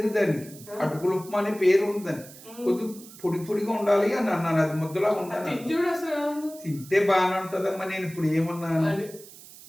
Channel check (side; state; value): right; noise; hiss, 19 dB below the sound